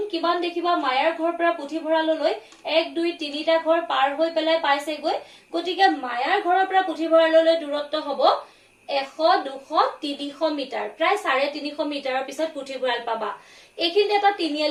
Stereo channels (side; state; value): both; identical; correlation 1.00